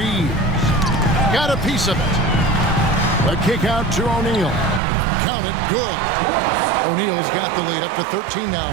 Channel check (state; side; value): drops out; left; at 4.8 s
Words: Got a piece of it. A kick out to O'Neal. Count it. Good. O'Neal's got the lead up to 13 now